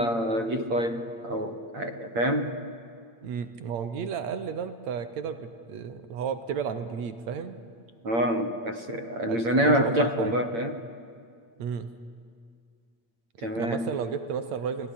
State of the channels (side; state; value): left; late; 8.7 ms